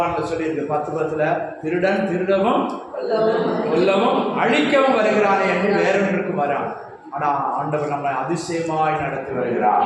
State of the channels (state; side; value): identical; both; correlation 1.00